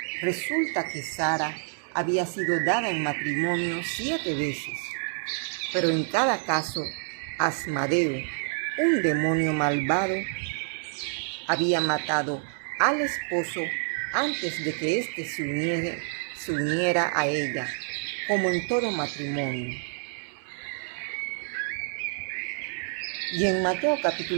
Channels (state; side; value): silent; left; 59 dB below the other